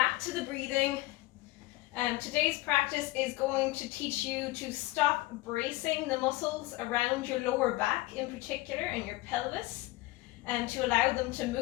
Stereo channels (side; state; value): right; quieter; 19.6 dB